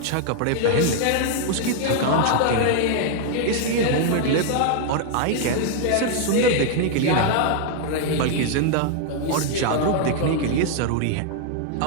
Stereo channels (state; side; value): different; both; correlation 0.00